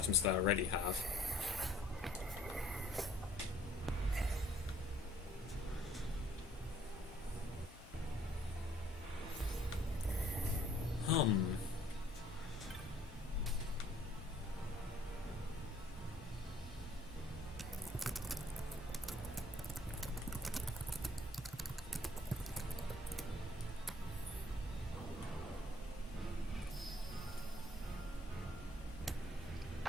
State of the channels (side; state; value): both; normal; correlation 0.60